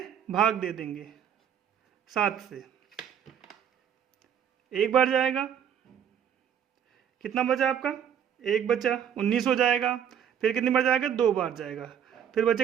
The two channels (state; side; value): quieter; left; 8.8 dB